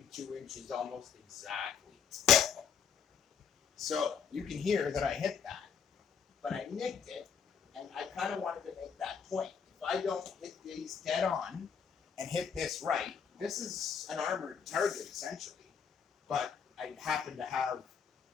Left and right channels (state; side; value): quieter; right; 6.9 dB